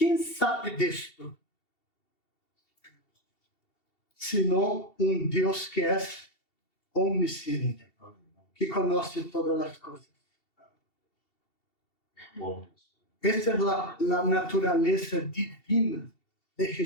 sabe disto? Senão Deus que é omnisciente, que conhece todas as coisas. Esta é a natureza divina de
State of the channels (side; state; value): right; late; 2.7 ms